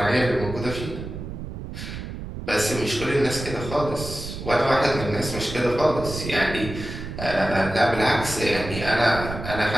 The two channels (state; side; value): noise; right; rumble, 8 dB below the sound